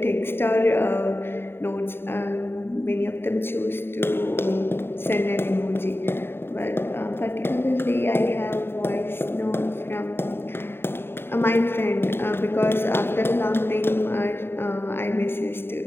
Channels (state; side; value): late; right; 0.11 ms